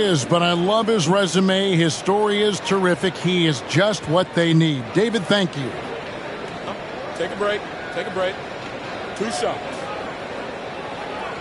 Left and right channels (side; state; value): both; identical; correlation 1.00